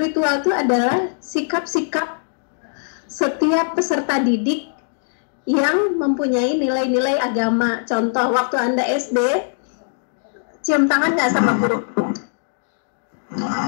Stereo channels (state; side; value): silent; right; digital silence